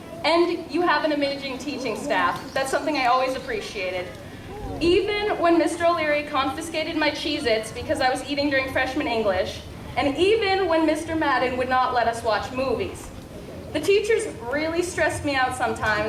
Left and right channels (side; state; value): both; identical; correlation 1.00